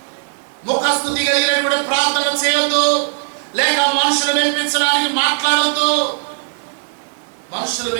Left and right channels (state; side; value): silent; left; digital silence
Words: ముఖస్తుతి కలిగినటువంటి ప్రార్థన చేయొద్దు, లేక మనుషులు మెప్పించడానికి మాట్లాడొద్దు. మనుషులు